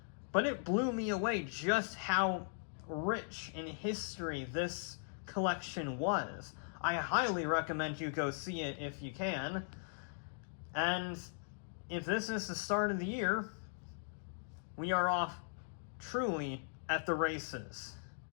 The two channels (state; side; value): silent; right; digital silence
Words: But it blew me away just how rich in history this collection was. I highly recommend you go see it if you can. And if this is the start of the year, we are off truly at the races.